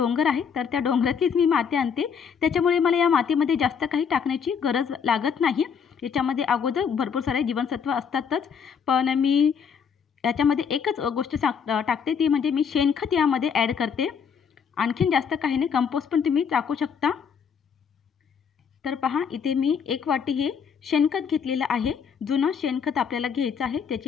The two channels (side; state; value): right; quieter; 6.8 dB